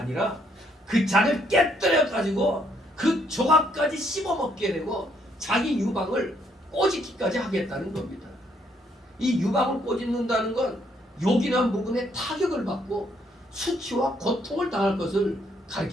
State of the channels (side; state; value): both; normal; correlation 0.70